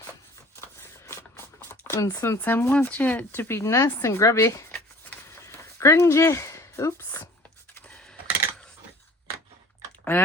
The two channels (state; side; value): normal; both; correlation 0.48